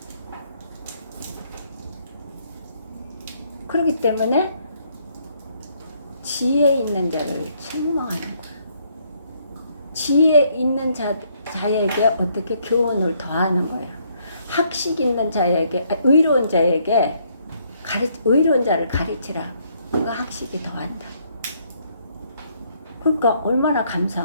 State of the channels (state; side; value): inverted; both; correlation -0.69